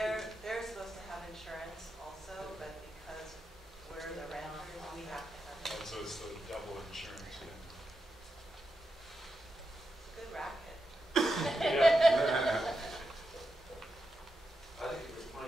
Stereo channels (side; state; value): both; normal; correlation 0.88